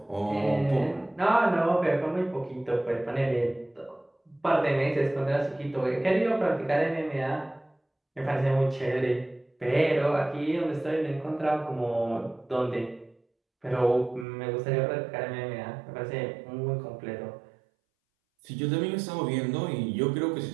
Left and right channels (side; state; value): left; drops out; at 14.2 s